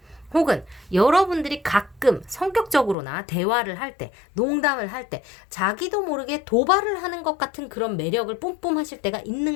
혹은 여러분들이 가끔 성격적으로나 대화를 할 때, 농담을 할 때 자기도 모르게 도발을 하는 것 같은 그런 매력을 뿜뿜 하실 때가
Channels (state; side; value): drops out; right; at 3.0 s